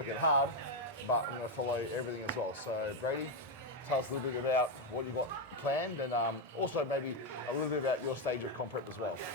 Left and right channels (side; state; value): both; normal; correlation 0.05